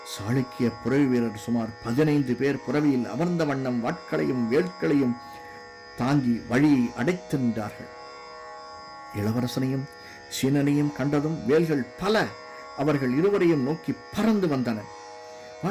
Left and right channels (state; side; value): identical; both; correlation 1.00